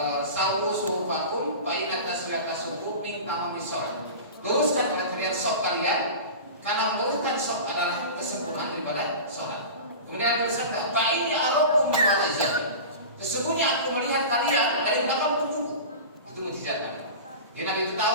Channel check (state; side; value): inverted; both; correlation -0.32